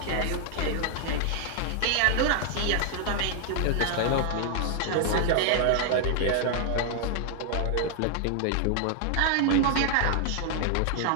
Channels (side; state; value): both; different; correlation 0.00